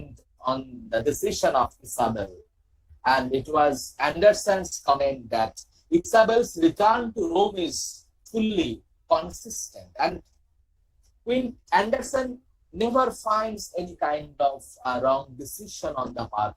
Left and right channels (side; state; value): both; identical; correlation 1.00